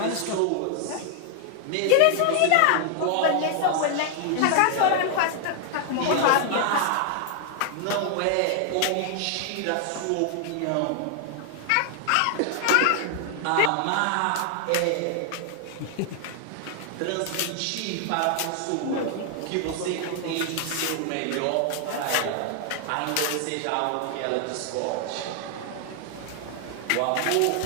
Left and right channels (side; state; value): both; different; correlation 0.00